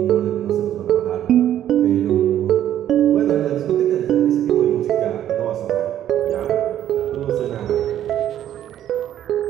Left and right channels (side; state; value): left; quieter; 11.3 dB